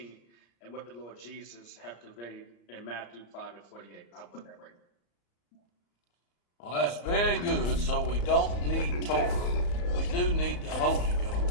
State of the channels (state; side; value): late; right; 34 ms